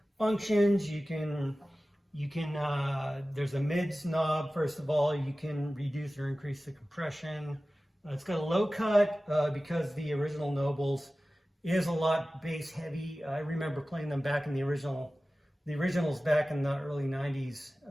functions. You can there's a mids knob. First of all, you can reduce or increase the compression. It's got a low cut because the original Nobles is a lot bass heavy. I remember playing them back in the originals back in the early 90s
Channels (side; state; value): both; normal; correlation 0.96